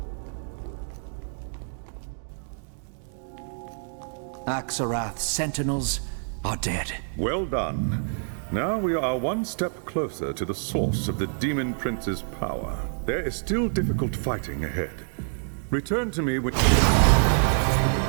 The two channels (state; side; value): silent; left; digital silence